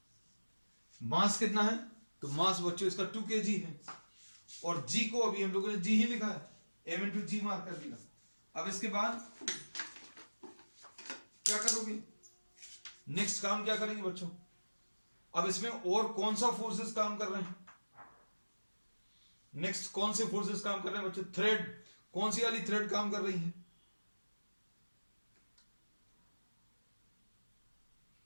मास कितना है, तो मास बच्चों इसका 2 kg है, और g को अभी हम लोगों ने g ही लिखा है, m इंटू जी मार्क कर दिया। अब इसके बाद क्या करोगे, नेक्स्ट काम क्या करेंगे बच्चों, अब इसमें और कौन सा फोर्सेस काम कर रहे हैं, नेक्स्ट कौन से फोर्सेस काम कर रहे हैं बच्चों, थ्रेड, कौन सी वाली थ्रेड काम कर रही है,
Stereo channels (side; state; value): both; inverted; correlation -1.00